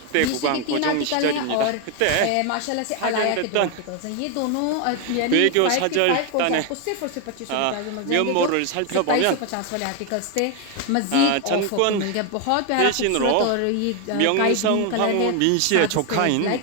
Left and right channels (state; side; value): different; both; correlation 0.01